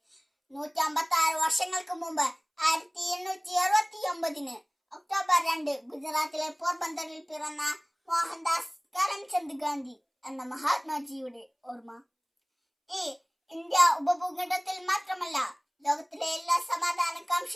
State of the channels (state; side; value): identical; both; correlation 1.00